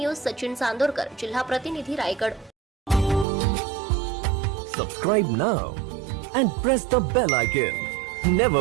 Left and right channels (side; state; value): left; drops out; at 3.2 s